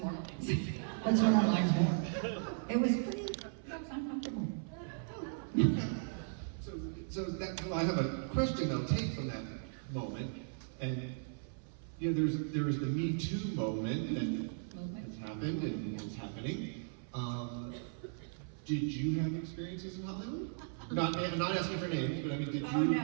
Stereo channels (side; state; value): left; silent; 53 dB below the other